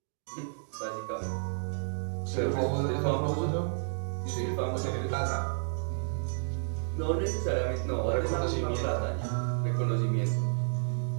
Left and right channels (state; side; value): silent; left; digital silence